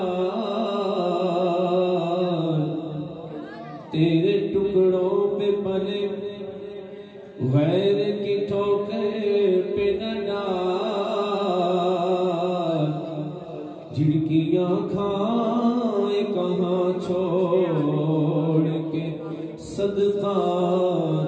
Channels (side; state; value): both; identical; correlation 1.00